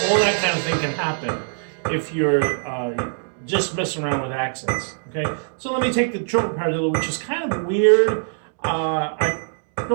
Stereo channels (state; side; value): silent; left; 64 dB below the other